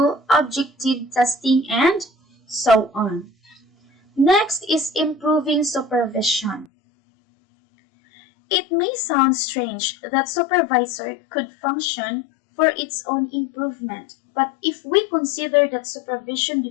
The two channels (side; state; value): right; drops out; at 6.7 s